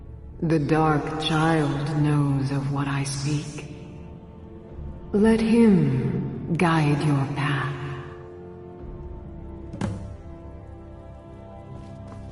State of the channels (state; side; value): identical; both; correlation 1.00